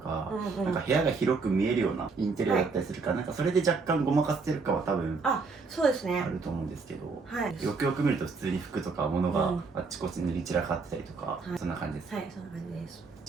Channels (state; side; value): quieter; left; 4.5 dB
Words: なんか部屋が広く見えるようなインテリアだったりするから、なんかそれで若干ごまかせてるかは多分そうですね、あると思うんですけど、よくよく見ると普通に服とか物があっちこっち塗り散らかってたりとか、そんな感じです。はい、そんな感じです。